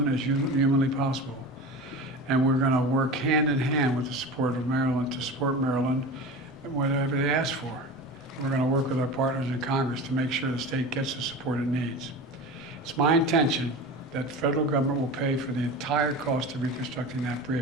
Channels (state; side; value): normal; both; correlation 0.31